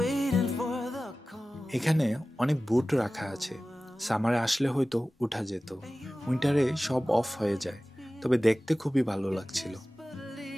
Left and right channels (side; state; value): both; normal; correlation 0.96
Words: এখানে অনেক বুট রাখা আছে। সামারে আসলে হয়তো উঠা যেত, উইন্টারে সব অফ হয়ে যায়। তবে দেখতে খুবই ভালো লাগছিল।